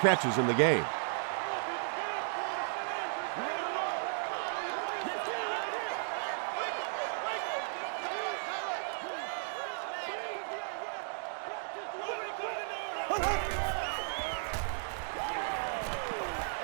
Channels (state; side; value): silent; left; digital silence